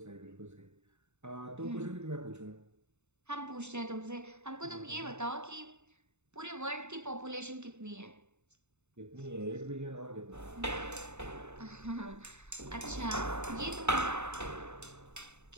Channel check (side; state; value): left; late; 0.82 ms